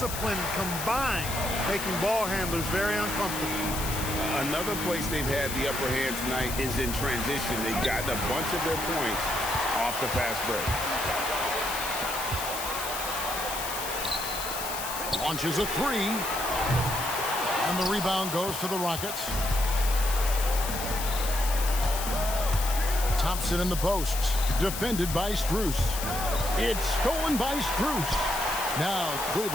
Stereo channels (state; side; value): noise; left; hiss, 6 dB below the sound